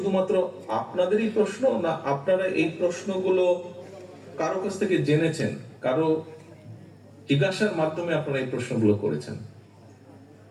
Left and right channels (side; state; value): both; identical; correlation 1.00